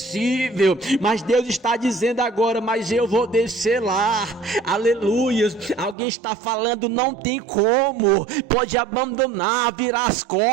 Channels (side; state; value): left; drops out; at 6.0 s